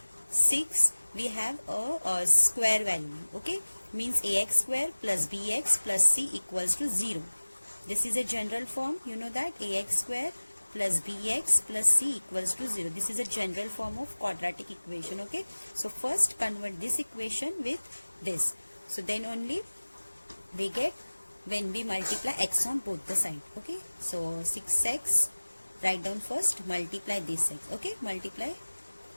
6, we have a square value. Okay, means ax square plus bx plus c equals to 0. This is a general form, you know that, ax square plus bx plus c equals to 0. This is a general form of quadratic equation. Okay, so first convert this equation with this, so then only we get when we multiply x on both the side. Okay, so 6x, write down first, multiply this x. Okay, multiply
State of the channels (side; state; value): both; inverted; correlation -1.00